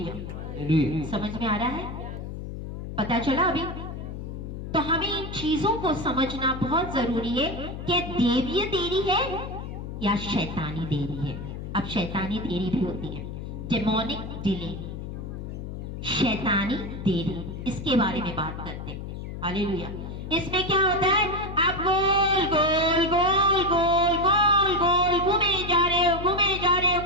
समझ में आ रहा है? पता चला अभी? तो हमें इन चीजों को समझना बहुत जरूरी है कि देवीय देरी है या शैतानी देरी है। अब शैतानी देरी भी होती है, डेमोनिक डिले, शैतानी देरी, इसके बारे में बात करते हैं। हालेलुया। इसमें क्या होता है, आप गोल गोल गोल गोल गोल गोल घूमे जा रहे हो, घूमे जा रहे हो,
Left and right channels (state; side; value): noise; left; hum, 8 dB below the sound